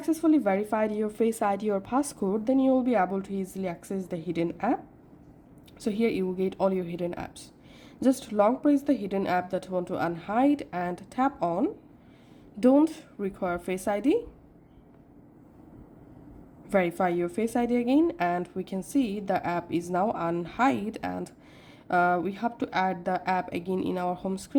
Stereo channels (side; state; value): both; identical; correlation 1.00